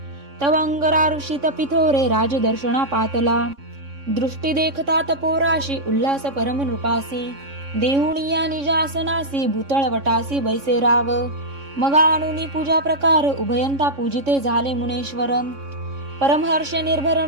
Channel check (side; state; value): left; late; 3.6 ms